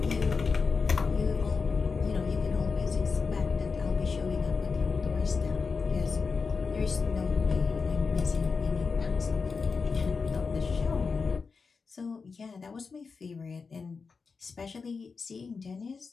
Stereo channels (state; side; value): quieter; right; 4.9 dB